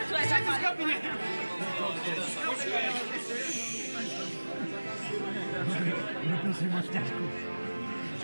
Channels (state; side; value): inverted; both; correlation -1.00